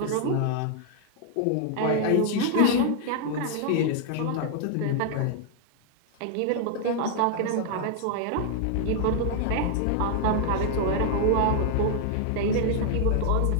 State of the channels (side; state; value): both; different; correlation 0.00